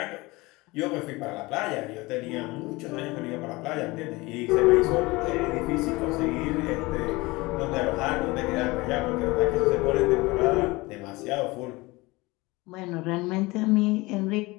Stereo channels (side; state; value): right; quieter; 22.5 dB